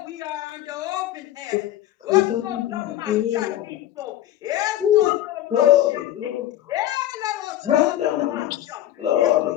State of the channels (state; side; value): quieter; right; 13.0 dB